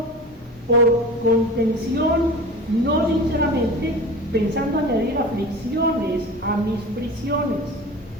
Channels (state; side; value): normal; both; correlation 0.34